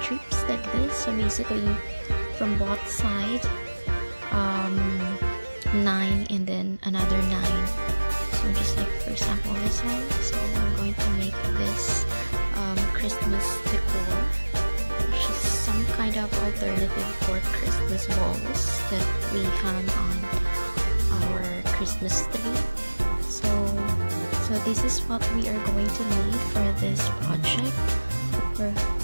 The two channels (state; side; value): inverted; both; correlation -1.00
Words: like this. So basically from both sides, 9 and then another 9. So just like for example this one. So I'm going to make this Christmas decor, which is some kind of alternative for Christmas balls that we hang on our Christmas tree. So this is what we are going to need for this project.